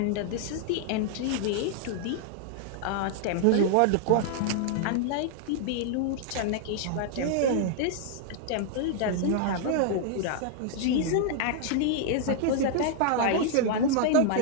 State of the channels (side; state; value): both; different; correlation -0.01